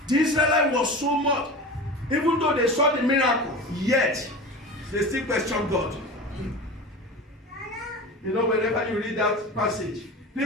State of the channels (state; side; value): normal; both; correlation 0.31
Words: The Israelites was so much. Even though they saw the miracle, yet they still question God. You know, whenever you read that passage,